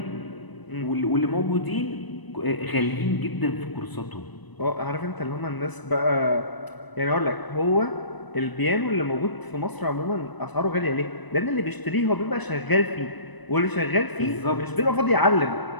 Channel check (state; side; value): late; right; 1.0 ms